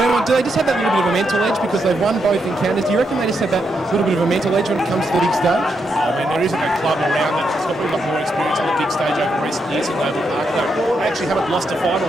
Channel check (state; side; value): normal; both; correlation 0.81